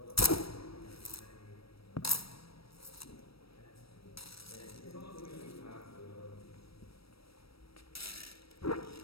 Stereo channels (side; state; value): right; late; 0.76 ms